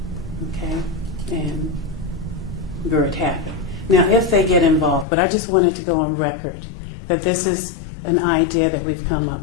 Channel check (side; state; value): right; drops out; at 5.1 s